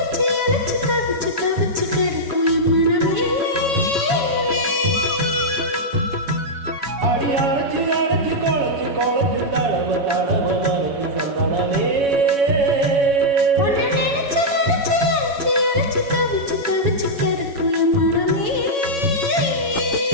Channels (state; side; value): late; left; 7.1 ms